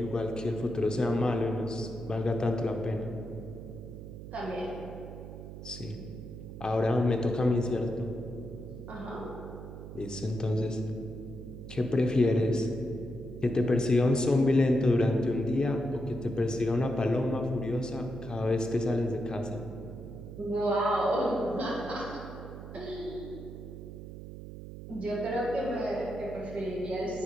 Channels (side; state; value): right; noise; hum, 11 dB below the sound